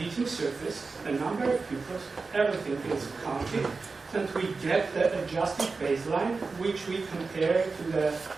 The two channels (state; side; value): quieter; left; 4.2 dB